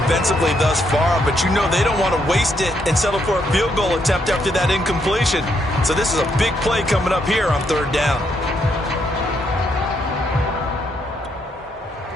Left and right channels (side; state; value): both; normal; correlation 0.76